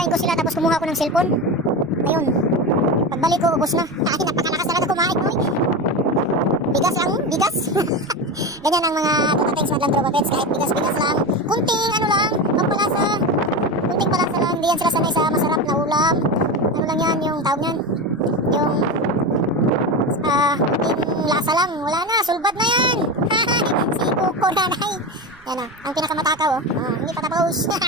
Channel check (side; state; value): right; noise; rumble, 28 dB below the sound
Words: ko sila tapos kumuha ko ng cellphone. Ayun, pagbalik ko ubos na. Ay, napakalakas talaga kumain ko. Bigas lang, bigas. Ganyan ang mga tutatings madlang tropa pets. Kahit bigas-bigas lang, kunting ano lang, pampalasa. Kunting palasa lang, hindi yan sila sanay sa masarap na ulam. Ano lang yan, yung tawag yan, yung kunting lasa lang. Wala na, sulbad na yan. Si Kuko nanay. Yan ang pinakamatakaw oh. Hindi pa tapos.